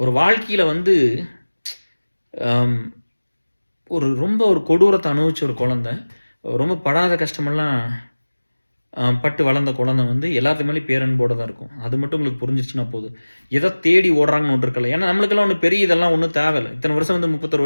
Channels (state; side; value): inverted; both; correlation -1.00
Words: வாழ்க்கையில வந்து அம் ரொம்ப ஒரு கொடூரத்த அனுபவிச்ச ஒரு குழந்தை, ரொம்ப படாத கஷ்டமெல்லாம் பட்டு வளர்ந்த குழந்தை வந்து எல்லாத்து மேலயும் பேரன்போட தான் இருக்கும். அது மட்டும் உங்களுக்கு புரிஞ்சிருச்சுன்னா போதும். எத தேடி ஓடுறாங்கன்னு ஒண்ணு இருக்குல்ல. ஏன்னா நம்மளுக்கெல்லாம் ஒண்ணும் பெரிய இதெல்லாம் ஒண்ணும் தேவையில்ல. இத்தன வருஷம் வந்து 31